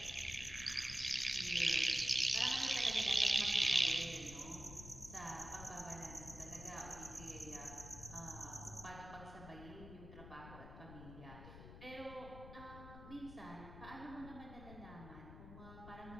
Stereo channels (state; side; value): noise; left; rumble, 13 dB below the sound